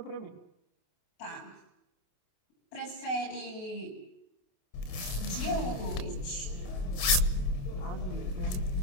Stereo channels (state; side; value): late; right; 28 ms